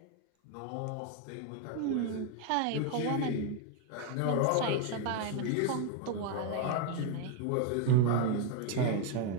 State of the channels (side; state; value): both; different; correlation 0.01